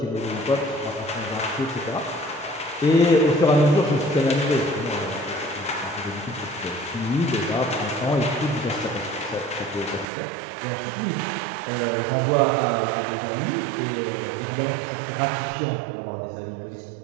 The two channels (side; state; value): left; drops out; at 10.1 s